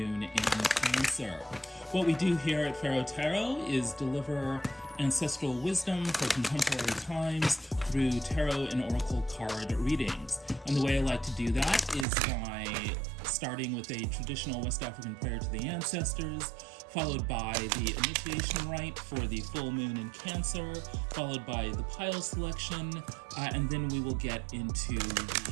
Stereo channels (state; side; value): drops out; left; at 12.1 s